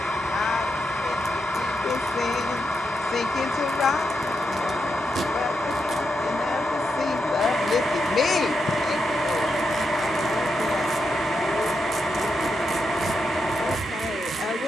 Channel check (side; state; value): both; normal; correlation 0.85